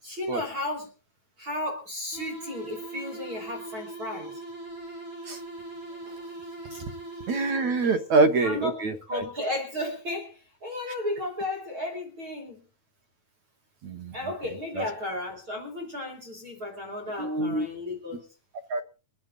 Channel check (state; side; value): late; left; 9.1 ms